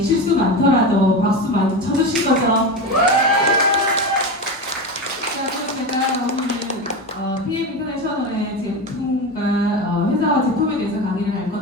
실수 많더라도 박수 많이 쳐주실 거죠? 자, 그럼 제가 오늘 PM 인터내셔널의 제품과 회사와 제품에 대해서 강의를 할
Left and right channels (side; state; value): both; normal; correlation 0.22